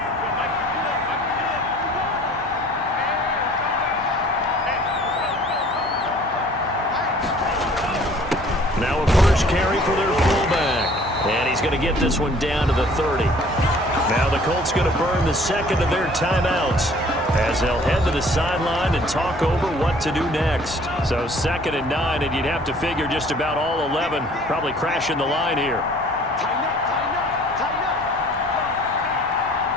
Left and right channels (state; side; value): normal; both; correlation 0.53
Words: Now a first carry for their fullback. And he's going to get this one down to the 30. Now the Colts going to burn the second of their timeouts, as they'll head to the sideline and talk over what to do next. So 2nd and 9, and you'd have to figure just about all 11 probably crashing the line here.